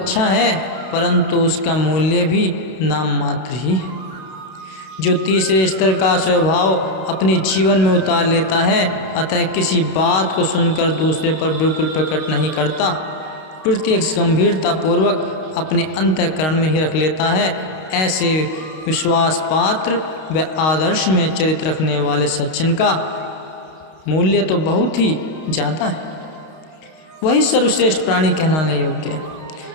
है परंतु उसका मूल्य भी नाम मात्र ही है। जो तीसरे स्तर का स्वभाव अपने जीवन में उतार लेता है, अतः किसी बात को सुनकर दूसरे पर बिल्कुल प्रकट नहीं करता, प्रत्यक्ष गंभीरता पूर्वक अपने अंतःकरण में ही रख लेता है, ऐसे विश्वास पात्र व आदर्श में चरित्र रखने वाले सज्जन का मूल्य तो बहुत ही ज़्यादा है, वही सर्वश्रेष्ठ प्राणी कहलाने योग्य है।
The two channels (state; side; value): late; right; 32 ms